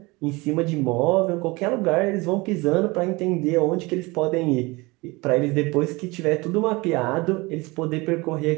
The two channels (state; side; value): quieter; left; 24.0 dB